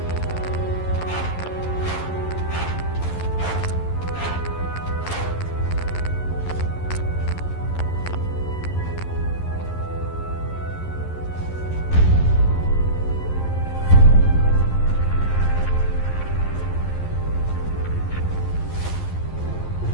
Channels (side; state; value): right; late; 11 ms